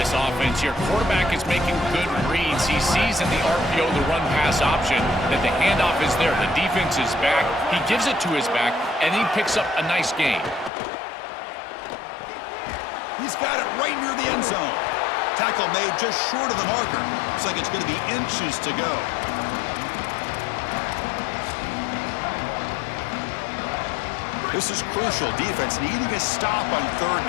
offense here. Quarterback is making good reads. He sees in the RPO the run-pass option that the handoff is there. The defense is back. He gives it to his back, and he picks up a nice gain. He's got it right near the end zone. Tackle made just short of the marker. Looks like it's going to be inches to go. This is crucial. Defense needing a stop on third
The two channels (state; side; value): drops out; right; at 10.7 s